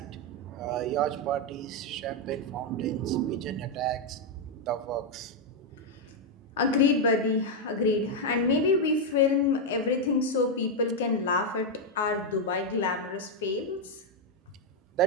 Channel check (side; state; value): both; normal; correlation 0.01